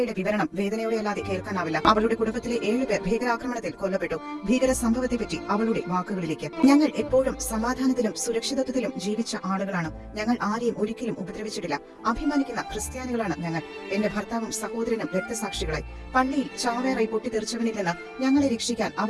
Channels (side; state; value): both; identical; correlation 1.00